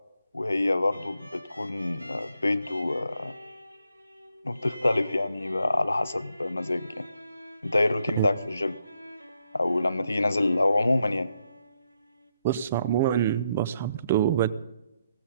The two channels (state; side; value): inverted; both; correlation -0.78